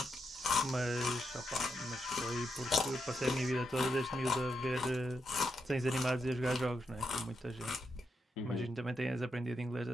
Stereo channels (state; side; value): normal; both; correlation 0.83